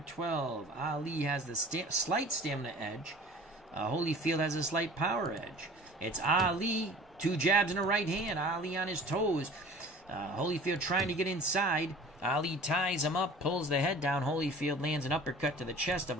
Ali has the slight stamina edge. Holyfield has a slight power edge. It's Ali, 2 jabs and a right hand. Ali on his toes. Holyfield trying to get inside. Ali ties him up, pulls the head down. Holyfield lands an uppercut to the chest of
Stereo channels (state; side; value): normal; both; correlation 0.44